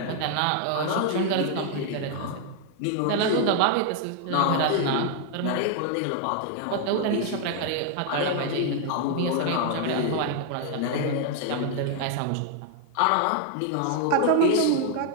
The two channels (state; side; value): different; both; correlation 0.00